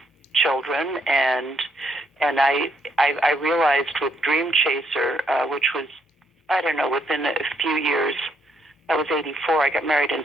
children, and I realized with Dream Chaser, which was, I don't know, within a few years. I was 84. I got married in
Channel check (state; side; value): normal; both; correlation 0.73